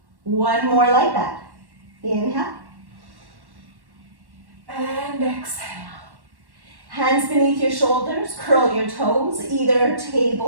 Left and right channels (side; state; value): left; late; 1.1 ms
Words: 1 more like that. Inhale. And exhale. Hands beneath your shoulders, curl your toes, either